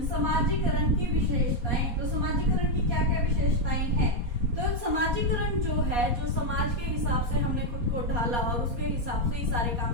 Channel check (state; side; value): late; left; 4.2 ms